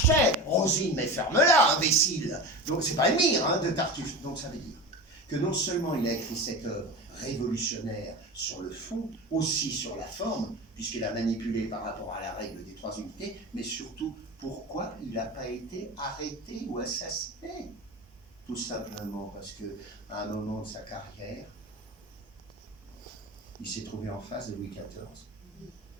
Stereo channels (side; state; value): both; normal; correlation 0.28